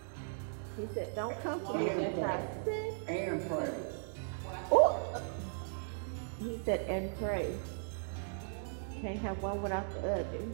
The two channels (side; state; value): left; silent; digital silence